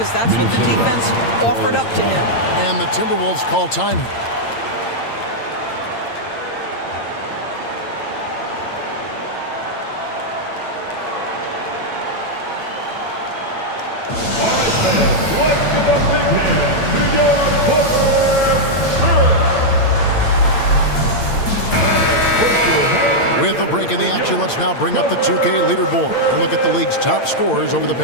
that's what the defense offered up to him. And the Timberwolves call time. With a break in the action, let's now bring up the 2K leaderboard and look at the league's top scorers over the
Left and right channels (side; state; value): right; late; 8.8 ms